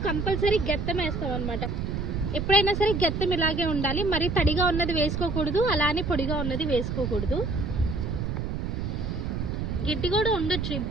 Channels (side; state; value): right; noise; rumble, 3 dB below the sound